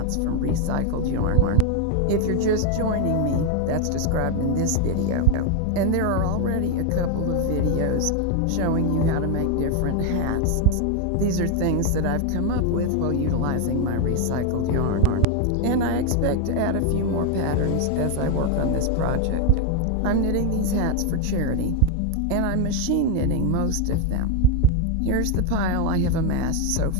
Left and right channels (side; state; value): both; different; correlation 0.01